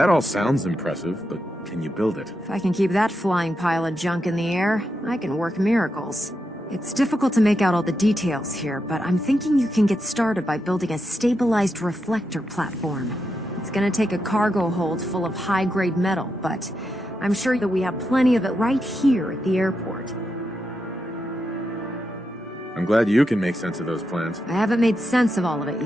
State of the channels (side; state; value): both; normal; correlation 0.85